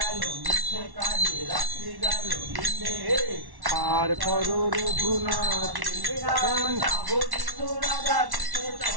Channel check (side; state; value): left; late; 1.1 ms